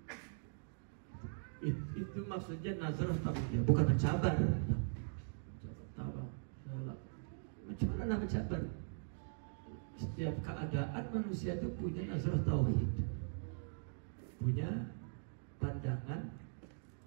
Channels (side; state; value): left; silent; digital silence